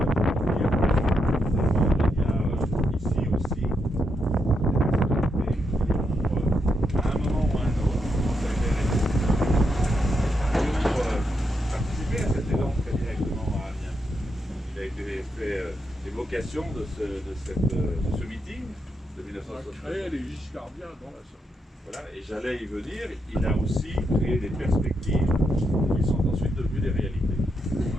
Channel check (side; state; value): both; normal; correlation 0.82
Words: L'évocation de ce meeting de 1973. Les Giscardiens dans la salle. Voilà, et j'allais y venir, il a aussi créé des perspectives qui sont ensuite devenues des réalités.